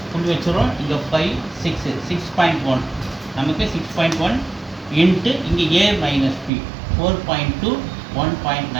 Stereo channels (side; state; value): left; drops out; at 6.5 s